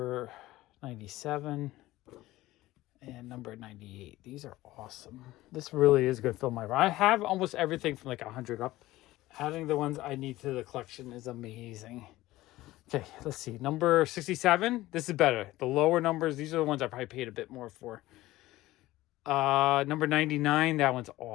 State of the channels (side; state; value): right; quieter; 17.1 dB